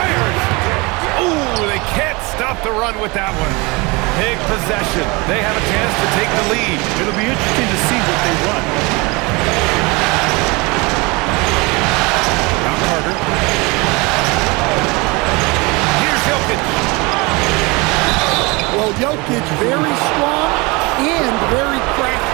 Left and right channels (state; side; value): quieter; left; 26.0 dB